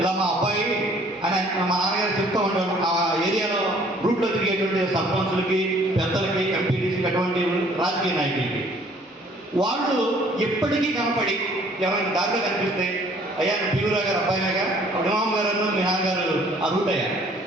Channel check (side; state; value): both; normal; correlation 0.58